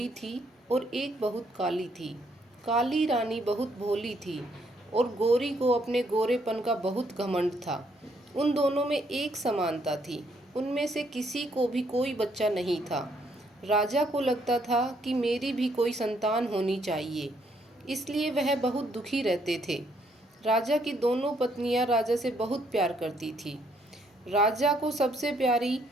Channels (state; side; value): normal; both; correlation 0.70